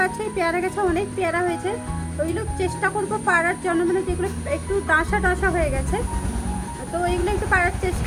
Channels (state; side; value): identical; both; correlation 1.00